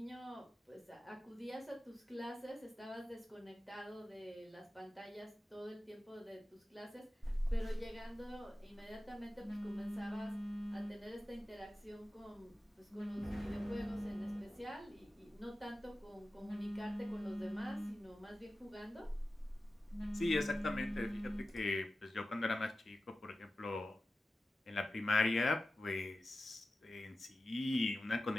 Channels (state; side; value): normal; both; correlation 0.94